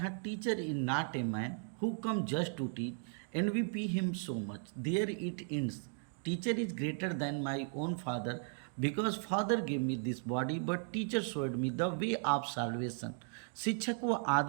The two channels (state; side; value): silent; left; 54 dB below the other